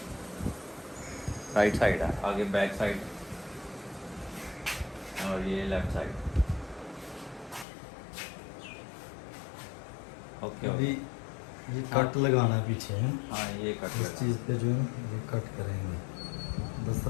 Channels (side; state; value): right; drops out; at 7.7 s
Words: है आगे बैक साइड और ये लेफ्ट साइड। ओके अभी ये कट लगाना है पीछे है। हाँ ये कट इस चीज़ पे जो है ये कट करेंगे।